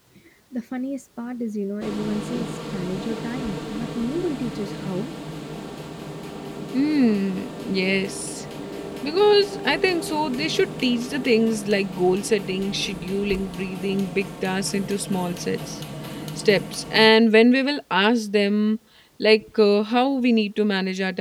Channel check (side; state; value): both; identical; correlation 1.00